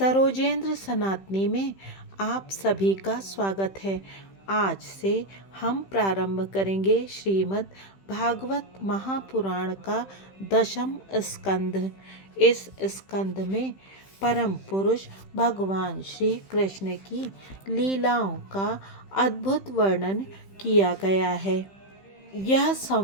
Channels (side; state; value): right; late; 15 ms